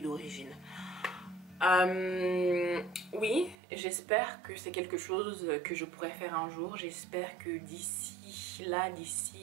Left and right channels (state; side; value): drops out; left; at 3.6 s